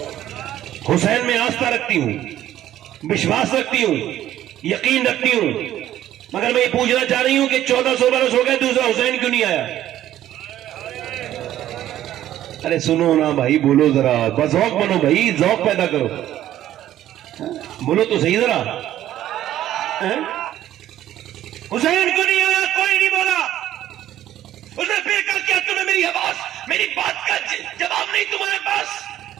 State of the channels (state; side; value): quieter; left; 12.7 dB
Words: حسین میں آستھا رکھتی ہوں، وشواس رکھتی ہوں، یقین رکھتی ہوں، مگر میں یہ پوچھنا چاہ رہی ہوں کہ 1400 برس ہو گئے دوسرا حسین کیوں نہیں آیا؟ ارے سنو نا بھائی، بولو ذرا، بس ذوق بنو بھائی، ذوق پیدا کرو، بولو تو صحیح ذرا، حسین کیوں نہیں آیا؟ کوئی نہیں بولا۔ اس نے پھر کہا کیا تمہیں میری آواز، میری بات کا جواب نہیں تمہارے پاس؟